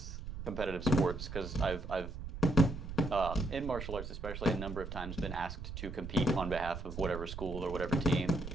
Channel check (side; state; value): right; noise; rumble, 8 dB below the sound